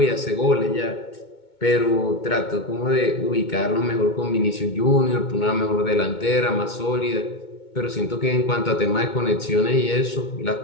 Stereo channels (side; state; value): right; late; 2.2 ms